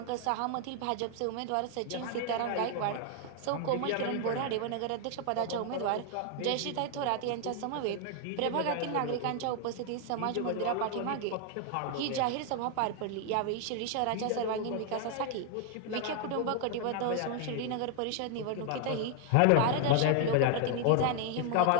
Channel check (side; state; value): both; different; correlation 0.00